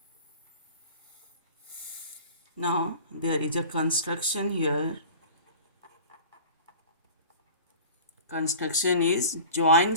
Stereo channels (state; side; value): inverted; both; correlation -0.40